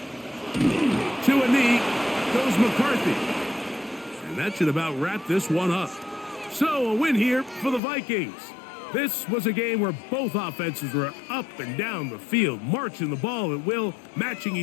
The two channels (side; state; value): right; drops out; at 7.8 s